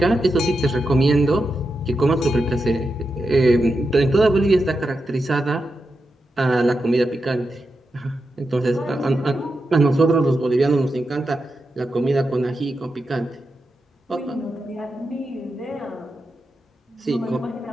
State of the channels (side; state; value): both; normal; correlation 0.88